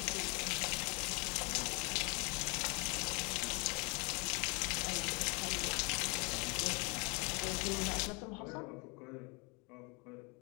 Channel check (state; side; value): quieter; right; 31.4 dB